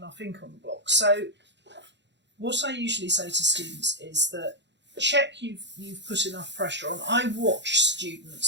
ink on the block. So what I usually say to students is that check you've put enough pressure on. I watch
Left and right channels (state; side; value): late; left; 0.52 ms